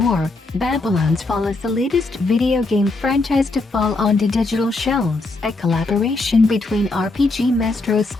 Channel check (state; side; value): quieter; right; 3.2 dB